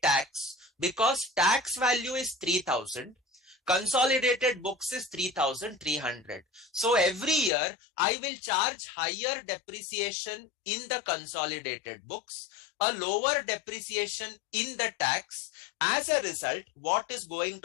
tax because tax value is 3,000. Consolidated books is 3,300. So every year I will charge higher depreciation in the consolidated books, a lower depreciation in the tax. As a result, what is going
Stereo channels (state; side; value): drops out; right; at 7.5 s